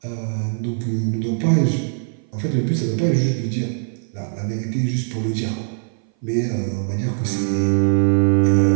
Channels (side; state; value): left; silent; 59 dB below the other